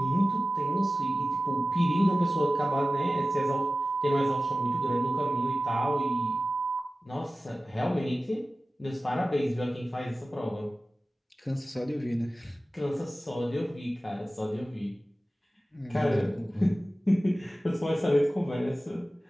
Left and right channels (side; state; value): both; normal; correlation 0.95